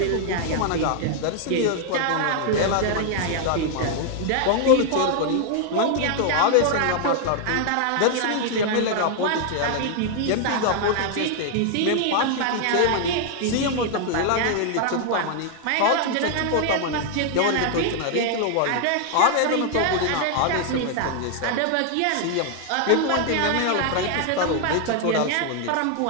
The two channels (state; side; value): different; both; correlation 0.00